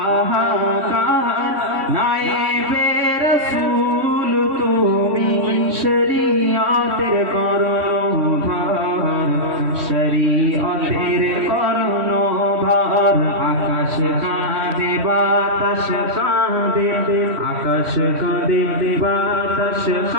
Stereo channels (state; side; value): late; left; 3.1 ms